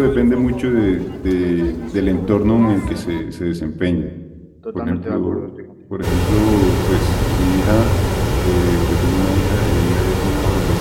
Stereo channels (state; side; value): identical; both; correlation 1.00